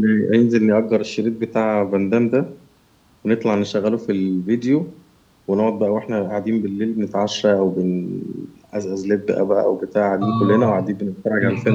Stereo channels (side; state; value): both; identical; correlation 1.00